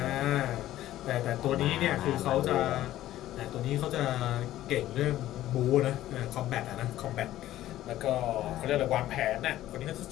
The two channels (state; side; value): quieter; right; 14.0 dB